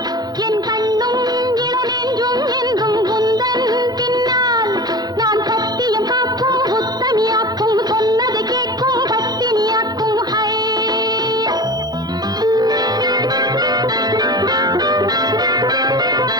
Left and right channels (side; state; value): left; late; 0.19 ms